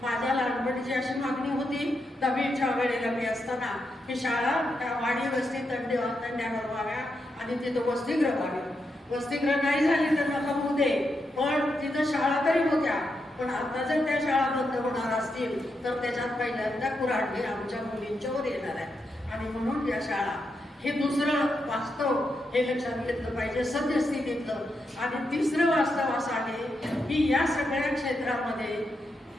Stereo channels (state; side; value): normal; both; correlation 0.84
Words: माझ्या लहानपणीची अशी मागणी होती 10वीच्या वेळेला मी असताना की शाळा त्या वाडी वस्ती तांड्यावर व्हाव्या आणि तिथं वसतिगृह व्हावे. वसतिगृह नाही झाली तर नका होऊ दे पण तिथं शाळा तरी होत्या पण आता जर त्या शाळा बंद होणार असतील तर त्याच्यात पहिल्यांदा कुऱ्हाडी आमच्या मुलींच्यावर येणार आहे आणि म्हणून या शाळा हे दुसरं वास्तव हे लक्षात घेतलं पाहिजे सद्यस्थितीतलं. आणि तिसरं वास्तव असं आहे की या सगळ्या क्षेत्रामध्ये